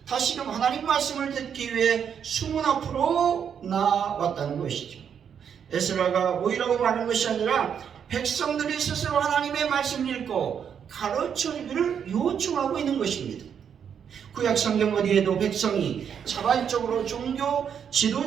다시금 하나님 말씀을 듣기 위해 수문 앞으로 나왔다는 것이죠. 에스라가 모이라고 말하는 것이 아니라 백성들이 스스로 하나님의 말씀을 읽고 가르쳐주기를 요청하고 있는 것입니다. 구약 성경 어디에도 백성이 자발적으로 종교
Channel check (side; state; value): left; quieter; 7.8 dB